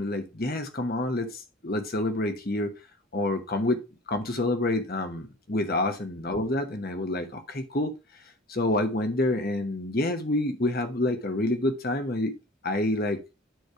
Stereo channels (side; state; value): both; normal; correlation 0.42